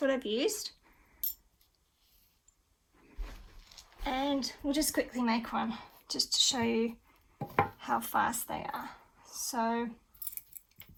I've used. And we'll just quickly make one just to show you how fast they are. So I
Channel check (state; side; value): identical; both; correlation 1.00